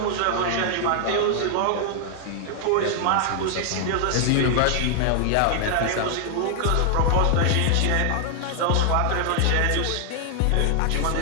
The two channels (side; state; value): both; different; correlation 0.00